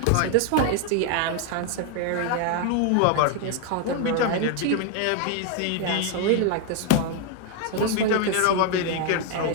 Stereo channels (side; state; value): both; different; correlation 0.01